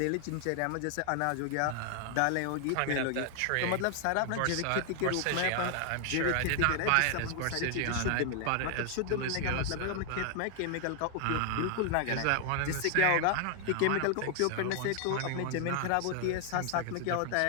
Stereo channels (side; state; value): both; different; correlation 0.00